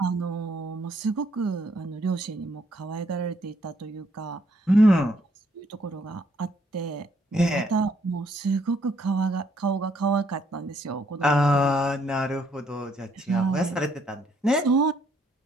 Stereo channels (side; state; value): both; normal; correlation 0.69